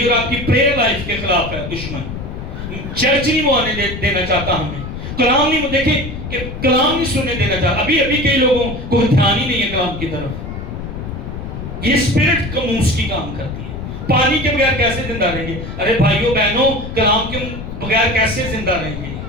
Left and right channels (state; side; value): noise; left; rumble, 8 dB below the sound